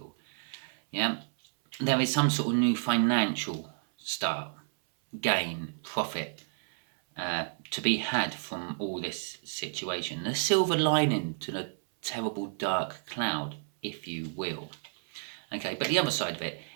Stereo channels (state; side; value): silent; left; 57 dB below the other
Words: Yeah, there is some sort of new financial start, gain, profit to be had from all this situation. The silver lining to the terrible dark cloud, if you will. Okay, but the other side of it